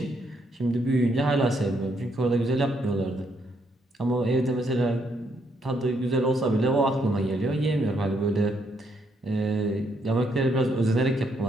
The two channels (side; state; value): both; normal; correlation 0.74